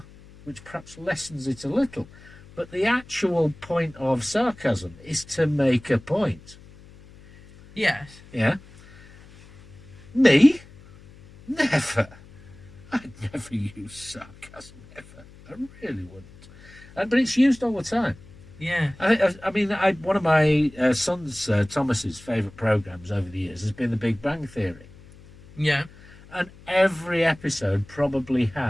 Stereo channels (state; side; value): noise; left; hum, 22 dB below the sound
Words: which perhaps lessens it a little. But the actual point of sarcasm is to make a point. Yes. Yeah. Me? Never. I'd never use sarcasm, ever. I really wouldn't. But it's used all the time. Yeah. I mean, one of my son's, Thomas's, favourite programmes over the years has been The Big Bang Theory. Yeah. And every episode probably